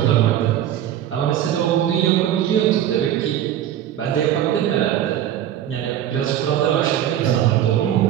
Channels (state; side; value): quieter; left; 11.2 dB